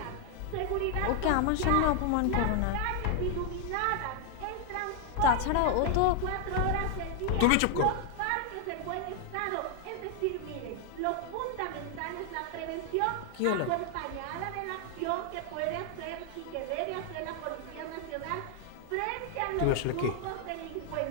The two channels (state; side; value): different; both; correlation 0.00